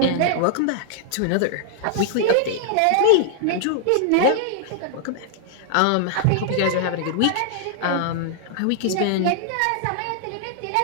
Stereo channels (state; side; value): different; both; correlation -0.01